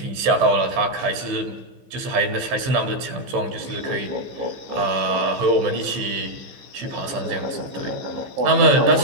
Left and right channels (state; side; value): late; left; 15 ms